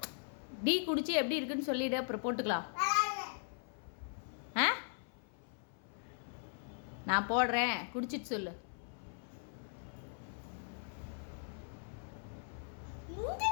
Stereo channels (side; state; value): right; silent; 52 dB below the other